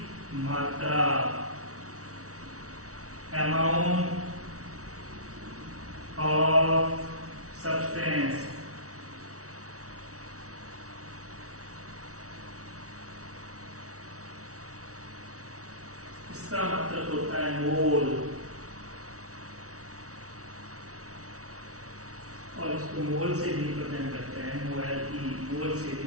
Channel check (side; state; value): left; late; 0.65 ms